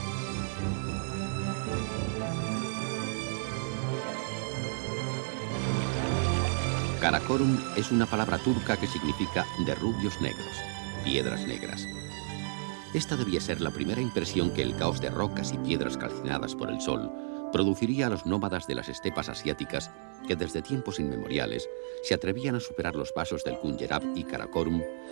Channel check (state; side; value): silent; left; digital silence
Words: Karakorum es una palabra turca que significa de rubios negros, piedras negras. Esta debía ser la primera impresión que el caos de rocas y piedras calcinadas por el sol produciría a los nómadas de las estepas asiáticas que desde tiempos inmemoriales se atrevían a superar los pasos del Punjab y Karakorum